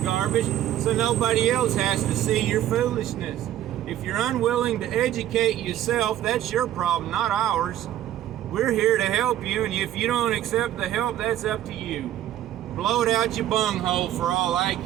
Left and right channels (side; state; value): left; quieter; 12.4 dB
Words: so nobody else has to see your foolishness. If you're unwilling to educate yourself, that's your problem, not ours. We're here to help you, and if you don't accept the help, that's up to you. Blow it out your bunghole for all I